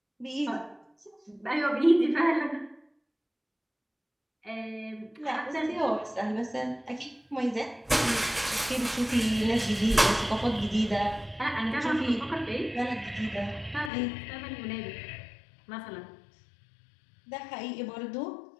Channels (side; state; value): right; drops out; at 13.9 s